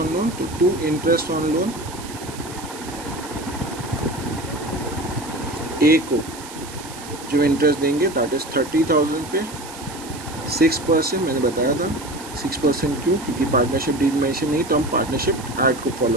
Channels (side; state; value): right; noise; hiss, 15 dB below the sound